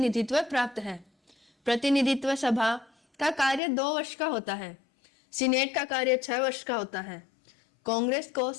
प्राप्त है। प्रतिनिधित्व सभा का कार्य 2 वर्ष का होता है। सीनेट का कार्य 6 वर्ष का होता है। कांग्रेस को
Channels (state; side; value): drops out; right; at 3.6 s